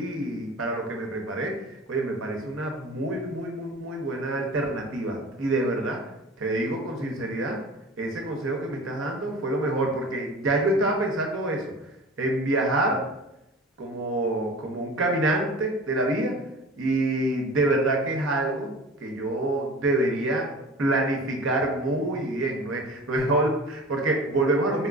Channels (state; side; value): normal; both; correlation 0.38